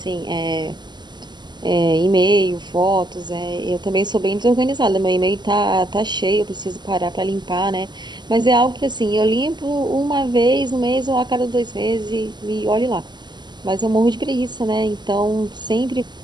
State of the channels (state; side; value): late; left; 0.21 ms